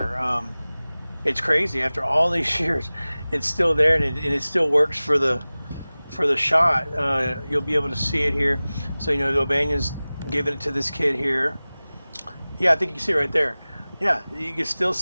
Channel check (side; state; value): both; inverted; correlation -0.98